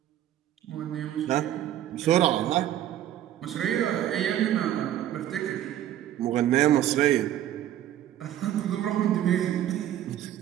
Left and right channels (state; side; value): quieter; left; 12.0 dB